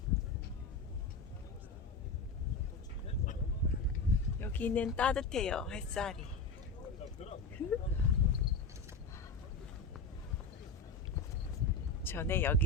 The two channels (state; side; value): quieter; right; 4.0 dB